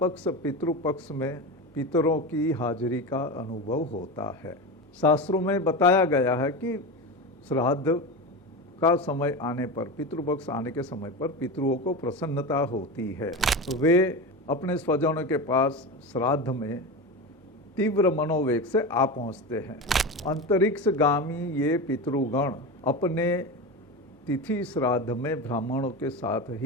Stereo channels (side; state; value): both; normal; correlation 0.23